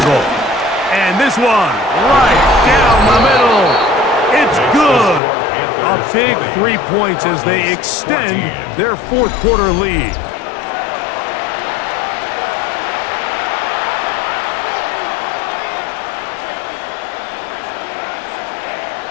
goal. And this one right down the middle. It's good. A big 3 points as they extend their 4th quarter lead.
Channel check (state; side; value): drops out; right; at 5.2 s